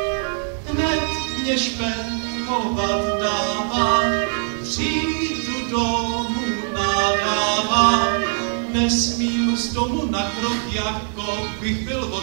Hned mě špehovat dává, přijdu domů nadává. Nesmím z domu na krok, jako bych byl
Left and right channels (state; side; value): silent; left; 55 dB below the other